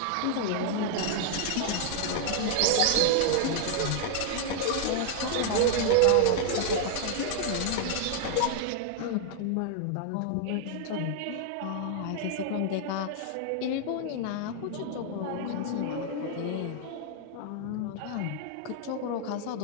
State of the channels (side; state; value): both; different; correlation 0.00